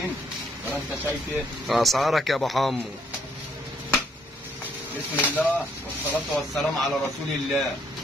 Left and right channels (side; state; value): both; normal; correlation 0.69